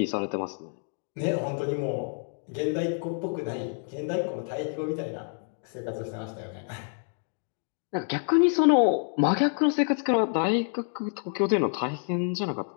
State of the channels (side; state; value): right; silent; 59 dB below the other